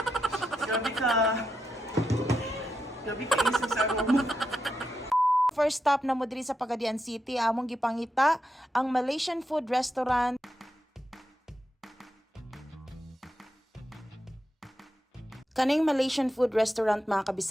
Grabe ka. Grabe ka isip sa aroma. First stop na mo diri sa Pagadian City, among gipangita ang Malaysian food restaurant. Kaning Malaysian food restaurant mga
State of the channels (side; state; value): both; normal; correlation 0.85